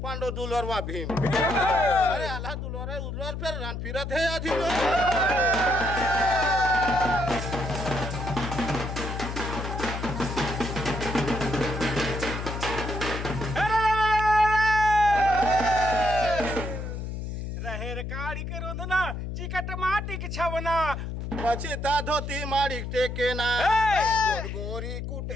पांडव दुलरवा भीम। अरे आला दुलर उलर फिर रन फिरत है आधी रहेर काड़ी के रोंदना चिकट माटी के छवना बचिता धोती माड़ी टेके ना गोर गोरी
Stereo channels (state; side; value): noise; left; hum, 5 dB below the sound